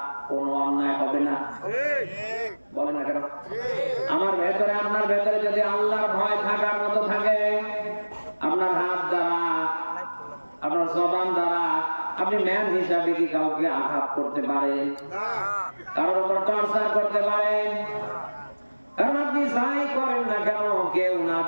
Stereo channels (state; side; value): inverted; both; correlation -1.00